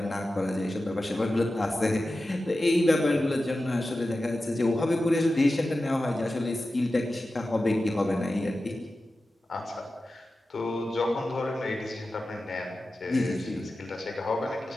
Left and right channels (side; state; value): both; normal; correlation 0.93